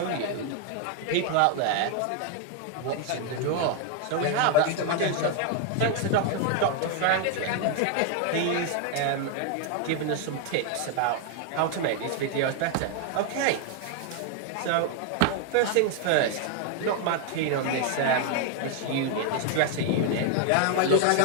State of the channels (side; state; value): both; different; correlation 0.00